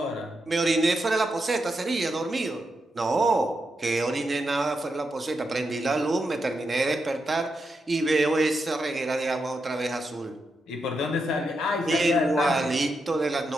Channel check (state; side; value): normal; both; correlation 0.85